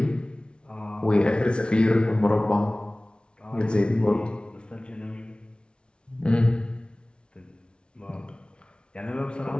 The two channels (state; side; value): late; right; 0.057 ms